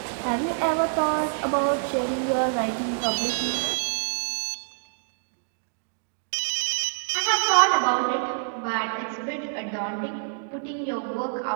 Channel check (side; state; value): left; silent; digital silence